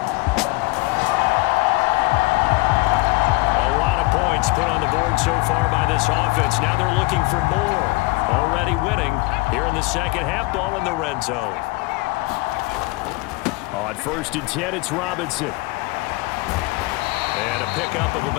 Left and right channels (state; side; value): quieter; right; 23.6 dB